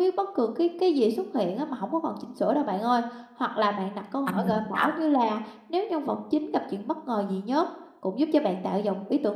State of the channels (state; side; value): identical; both; correlation 1.00